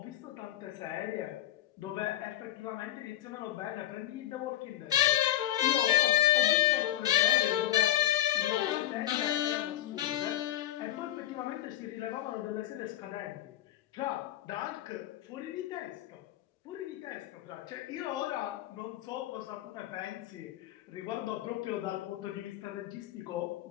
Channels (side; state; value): right; quieter; 13.6 dB